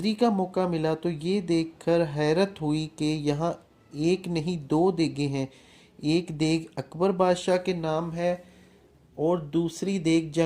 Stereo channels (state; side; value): identical; both; correlation 1.00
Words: का मौका मिला तो ये देखकर हैरत हुई कि यहाँ एक नहीं दो देगें हैं। एक देग अकबर बादशाह के नाम है और दूसरी देग